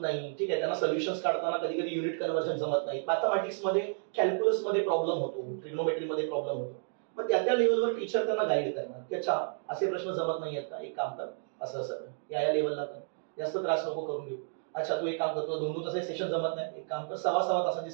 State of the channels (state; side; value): silent; left; digital silence